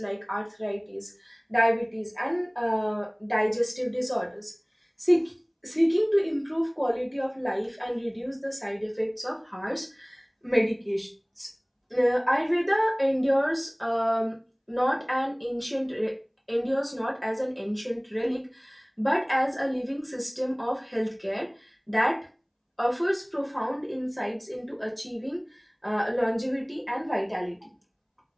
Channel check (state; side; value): identical; both; correlation 1.00